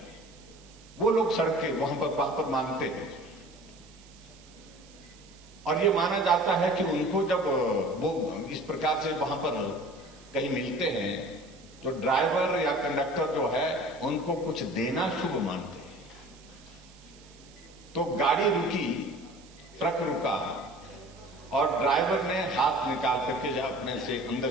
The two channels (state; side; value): noise; right; hiss, 24 dB below the sound